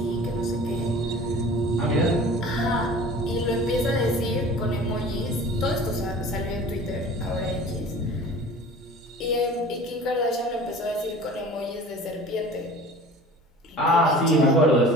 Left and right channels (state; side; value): normal; both; correlation 0.42